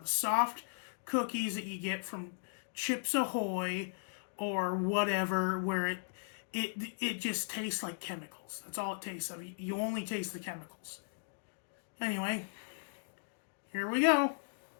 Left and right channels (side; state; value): right; silent; digital silence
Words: The soft cookies that you get from Chips Ahoy or whatever, where it just tastes like chemicals. That's all it tastes of. You only taste the chemicals. Anyway, here we go.